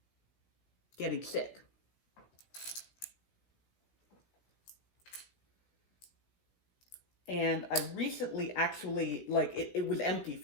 getting sick. And I recently actually, like, it was empty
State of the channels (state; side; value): late; right; 17 ms